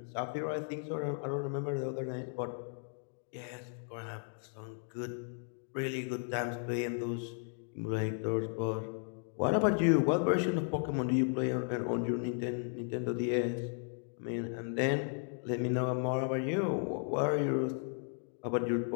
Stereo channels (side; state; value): right; silent; 54 dB below the other